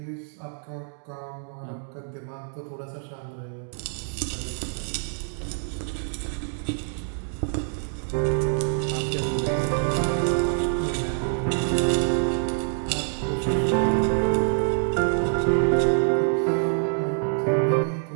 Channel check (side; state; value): left; silent; digital silence